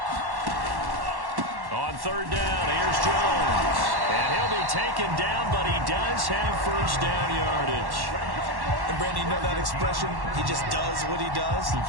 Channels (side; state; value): left; late; 1.1 ms